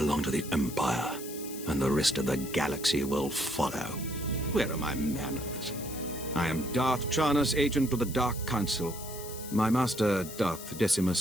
to the Empire, and the rest of the galaxy will follow. Where are my manners? I am Darth Charnus, agent of the Dark Council. My master, Darth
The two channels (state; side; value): noise; left; hiss, 12 dB below the sound